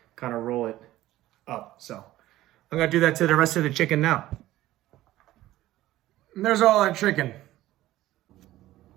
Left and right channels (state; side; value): quieter; left; 15.4 dB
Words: kind of roll it up. So I'm gonna do that to the rest of the chicken now. And there's all that chicken.